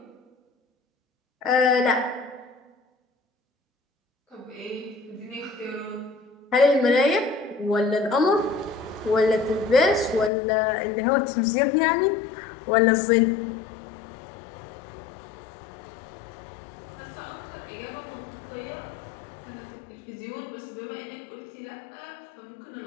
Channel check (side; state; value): right; drops out; at 10.3 s